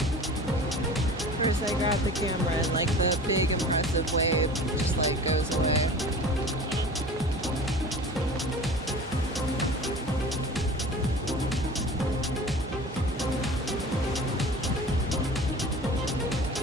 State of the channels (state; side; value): normal; both; correlation 0.39